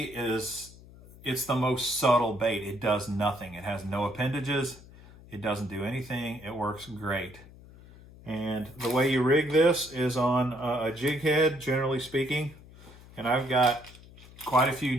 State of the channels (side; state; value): left; noise; hum, 21 dB below the sound